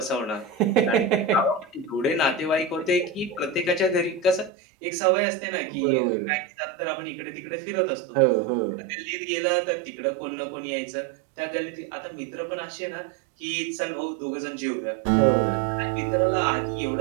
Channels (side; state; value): left; drops out; at 4.5 s